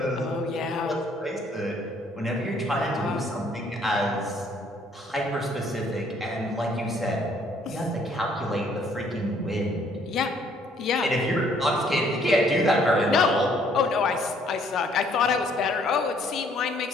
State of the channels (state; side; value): normal; both; correlation 0.63